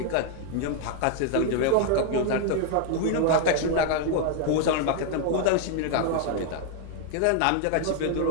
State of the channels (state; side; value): different; both; correlation 0.00